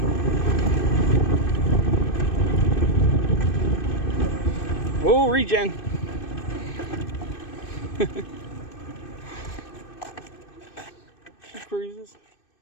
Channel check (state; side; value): late; right; 2.6 ms